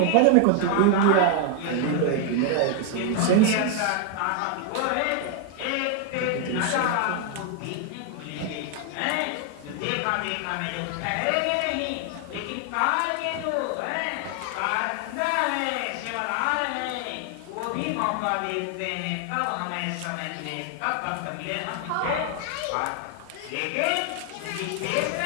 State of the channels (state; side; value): different; both; correlation 0.01